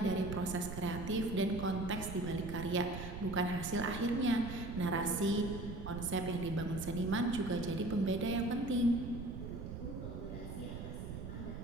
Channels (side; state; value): right; noise; rumble, 7 dB below the sound